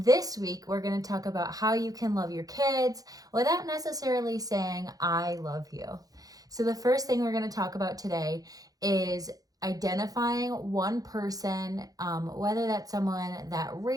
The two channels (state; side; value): late; left; 0.18 ms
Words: week, we're going to talk about how you can love your kids without necessarily saying, I love you. So the first thing we're going to talk about today is identifying one person, whether that's someone that